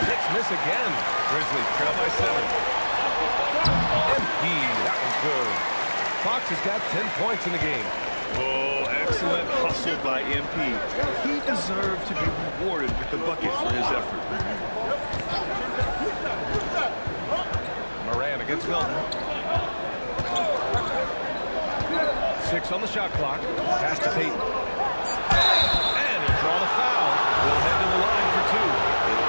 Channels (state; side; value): inverted; both; correlation -1.00